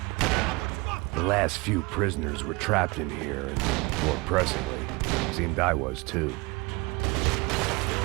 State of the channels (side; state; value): left; quieter; 25.6 dB